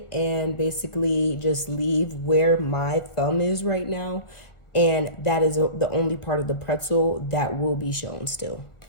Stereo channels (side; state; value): right; late; 1.5 ms